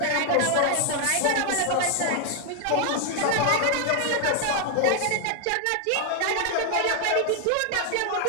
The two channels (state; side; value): different; both; correlation 0.00